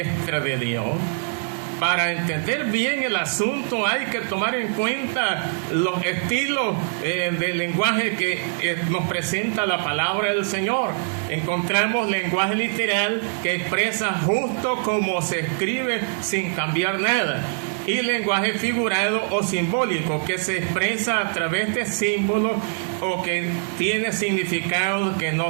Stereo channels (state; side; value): silent; left; 63 dB below the other